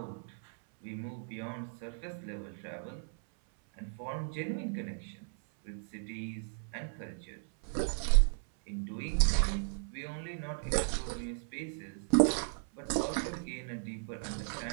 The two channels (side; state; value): left; silent; 54 dB below the other